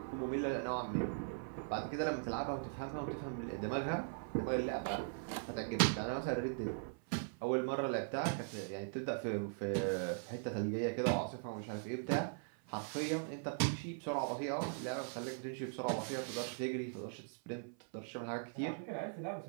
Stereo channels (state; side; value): silent; left; 51 dB below the other